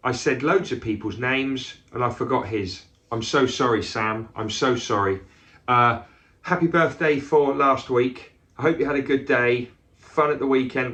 I said loads of people's names and I forgot his. I'm so sorry, Sam. I'm so sorry. Happy birthday for last week. I hope you had a good day. Fun at the weekend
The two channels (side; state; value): both; identical; correlation 1.00